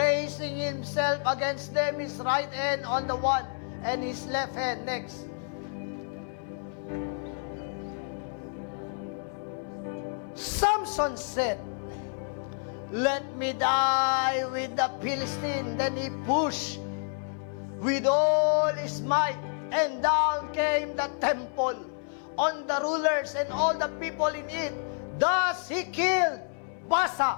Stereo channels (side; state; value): right; silent; 58 dB below the other